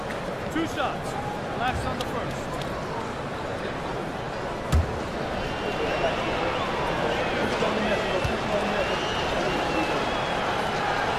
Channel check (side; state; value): both; identical; correlation 1.00